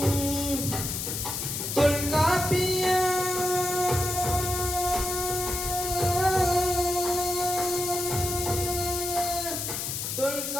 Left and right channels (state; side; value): noise; left; hiss, 3 dB below the sound